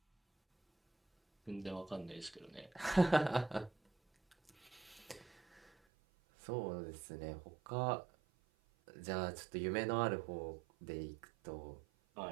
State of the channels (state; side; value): drops out; left; at 5.7 s